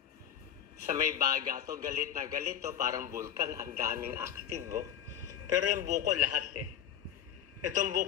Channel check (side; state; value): right; quieter; 10.0 dB